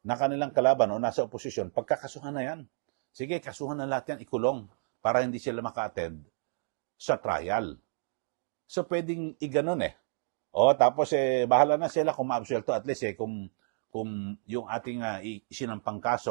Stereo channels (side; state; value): left; silent; digital silence